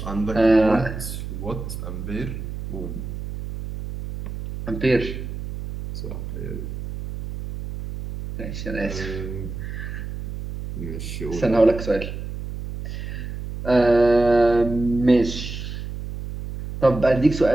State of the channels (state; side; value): noise; right; hum, 8 dB below the sound